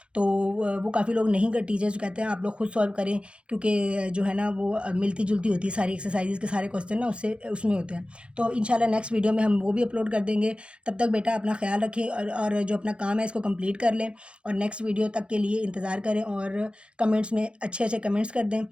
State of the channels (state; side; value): late; left; 0.059 ms